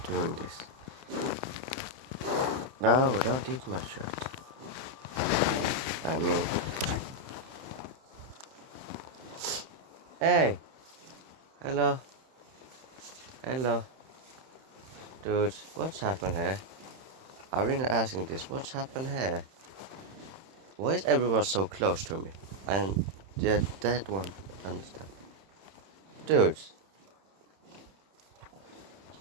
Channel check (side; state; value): left; late; 31 ms